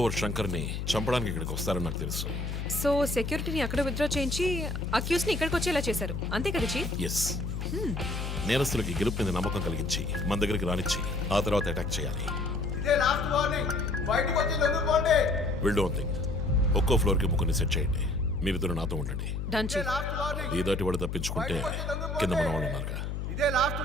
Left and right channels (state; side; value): noise; left; hum, 4 dB below the sound